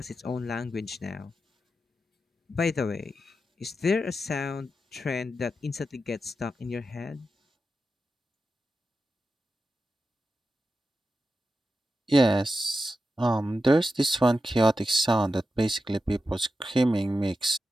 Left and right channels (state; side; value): normal; both; correlation 0.90